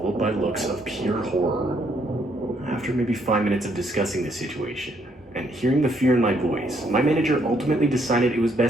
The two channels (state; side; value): normal; both; correlation 0.71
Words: by looks of pure horror. After maybe 5 minutes of discussing the situation, and hearing the fear in my voice, my manager ultimately decided it was